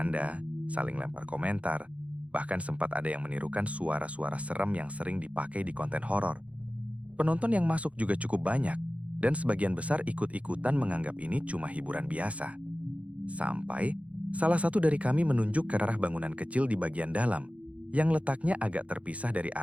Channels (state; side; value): late; left; 0.065 ms